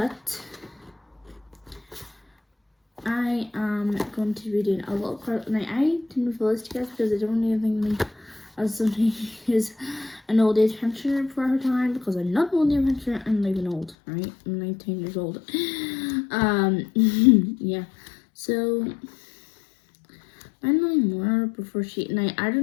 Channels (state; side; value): drops out; right; at 14.0 s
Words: I am going to be doing a little part. Now, I didn't reveal this to you guys because I don't even think as somebody who's an old age pensioner for her time, because I'm not an old age pensioner, I'm not even old, right? I'm 19 years old. Yeah. So I don't know anymore before she. Now I